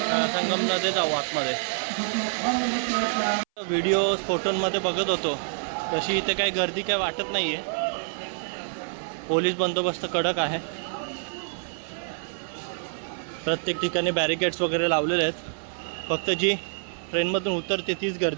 संगममध्ये जाऊ आतमध्ये. व्हिडिओज फोटोंमध्ये बघत होतो तशी इथे काही गर्दी काही वाटत नाही आहे. पोलीस बंदोबस्त कडक आहे. प्रत्येक ठिकाणी बॅरिकेड्स वगैरे लावलेले आहेत. फक्त जी ट्रेनमधून उतरते तीच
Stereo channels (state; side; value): silent; left; 60 dB below the other